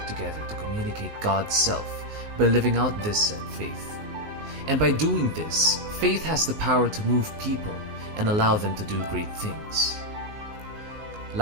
together to communicate God's self by living out this said faith. And by doing this, faith has the power to move people and allow them to do great things.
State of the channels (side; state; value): left; late; 19 ms